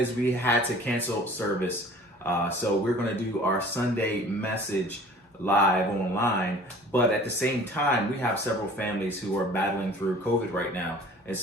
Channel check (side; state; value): both; normal; correlation 0.48